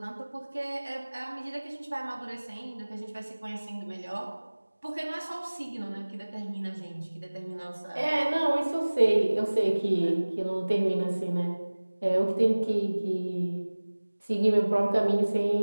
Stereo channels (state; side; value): inverted; both; correlation -1.00